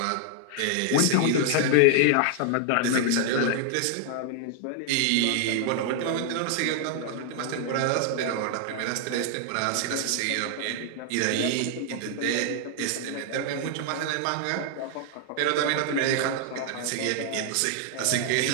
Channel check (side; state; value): both; different; correlation 0.00